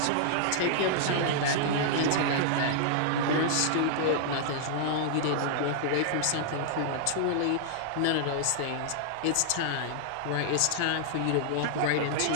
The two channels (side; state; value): both; different; correlation -0.01